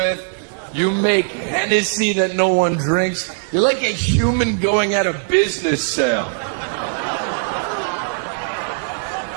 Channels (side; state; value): left; silent; digital silence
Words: You make Hennessy that no one drinks. You're like a human going at a business sale.